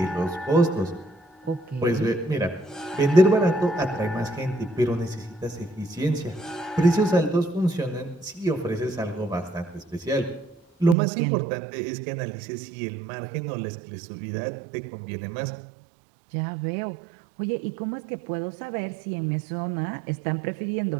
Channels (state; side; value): drops out; left; at 11.0 s